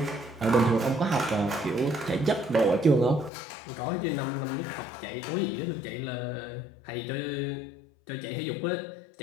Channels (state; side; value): drops out; right; at 3.3 s